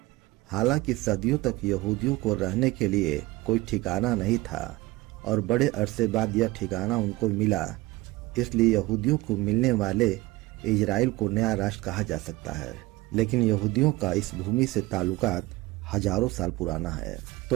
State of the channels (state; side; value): quieter; left; 19.9 dB